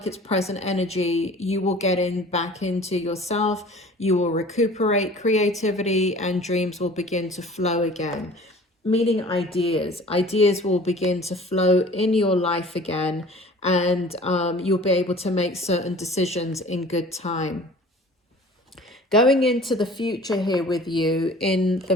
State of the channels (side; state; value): both; normal; correlation 0.46